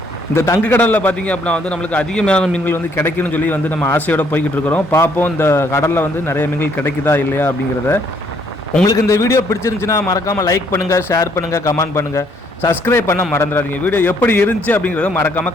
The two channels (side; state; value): both; normal; correlation 0.67